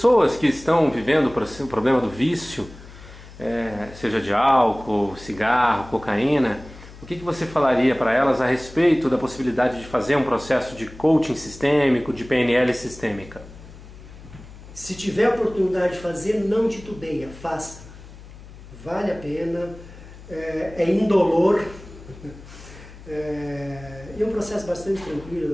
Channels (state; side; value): noise; left; hum, 18 dB below the sound